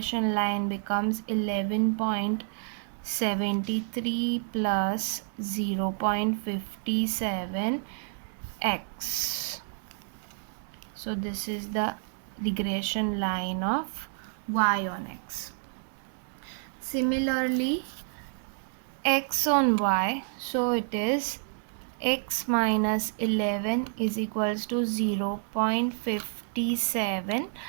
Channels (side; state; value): left; silent; digital silence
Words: line becomes 11.73 plus 0.57 x. So this is the regression line of y on x. Similarly, x on y, so it is x minus 11 is equals to 0.57